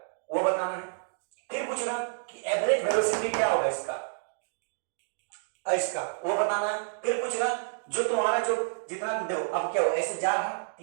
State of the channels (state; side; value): silent; left; digital silence